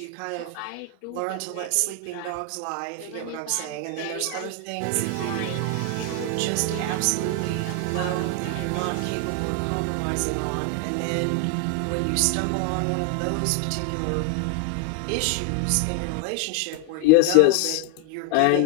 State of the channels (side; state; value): both; different; correlation 0.00